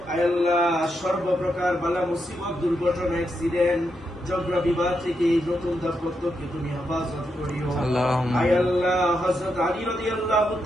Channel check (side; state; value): both; normal; correlation 0.83